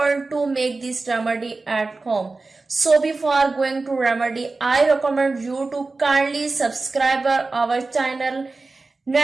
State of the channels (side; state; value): left; quieter; 3.6 dB